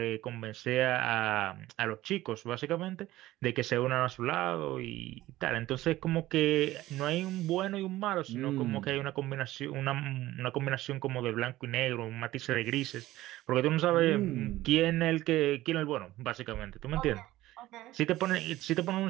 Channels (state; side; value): quieter; left; 16.2 dB